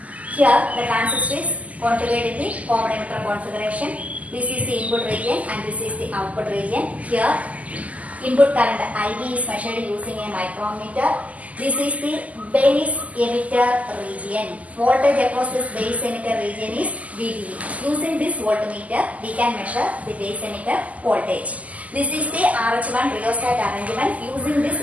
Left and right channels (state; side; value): late; left; 0.073 ms